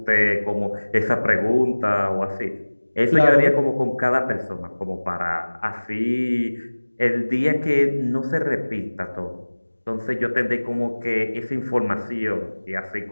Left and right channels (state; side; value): inverted; both; correlation -1.00